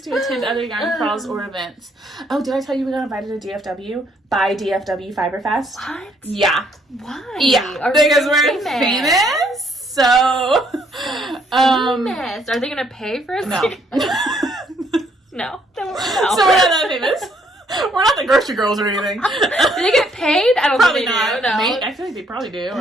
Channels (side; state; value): both; normal; correlation 0.68